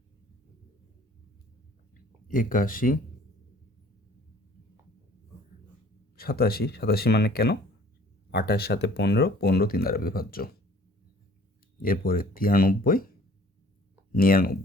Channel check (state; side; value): normal; both; correlation 0.52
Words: 81, 87, 87 মানে কেন? 28 সাথে 15, 15 3 দ্বারা বিভাজ্য। এরপরে 93,